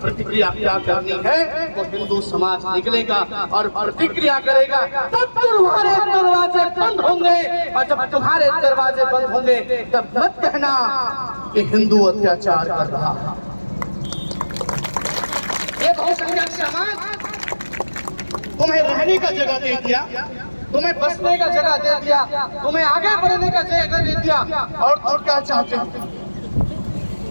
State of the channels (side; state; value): both; inverted; correlation -1.00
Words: प्रतिक्रिया क्या करनी है। वो हिंदू समाज निकलेगा और प्रतिक्रिया करेगा, तब तुम्हारे दरवाजे बंद होंगे। और जब तुम्हारे दरवाजे बंद होंगे तब मत कहना कि हिंदू अत्याचार कर रहा है। ये बहुसंख्यक समाज तुम्हें रहने का जगह दे दिया, तुम्हें बसने का जगह दे दिया, तुम्हें आगे बढ़ने का जगह दे दिया, और तुम क्या चाहते हो?